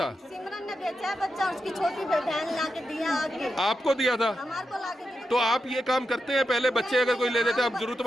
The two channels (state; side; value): normal; both; correlation 0.88